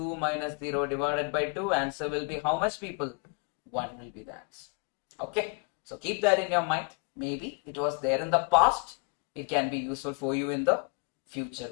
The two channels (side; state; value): right; quieter; 31.4 dB